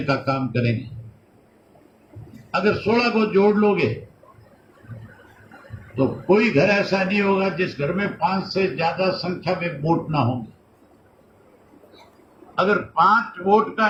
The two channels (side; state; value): both; identical; correlation 1.00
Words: का काम करेंगे। अगर 16 को जोड़ लोगे तो कोई घर ऐसा नहीं होगा जिस घर में 5 से ज्यादा संख्या में वोट ना होंगे। अगर 5 वोट का